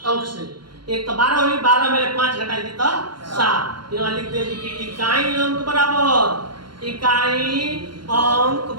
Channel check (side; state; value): left; late; 0.72 ms